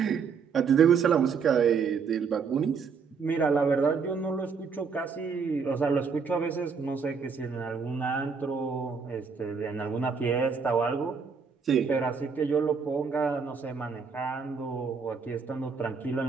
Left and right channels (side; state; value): left; quieter; 5.7 dB